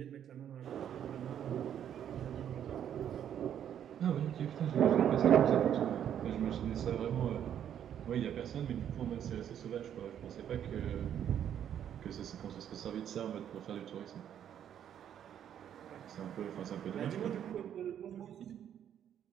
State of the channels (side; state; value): left; quieter; 9.7 dB